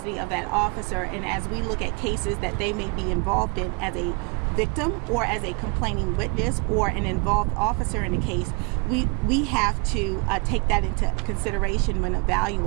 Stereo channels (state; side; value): quieter; left; 33.9 dB